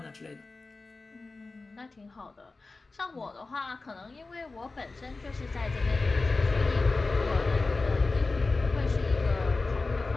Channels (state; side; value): quieter; right; 3.6 dB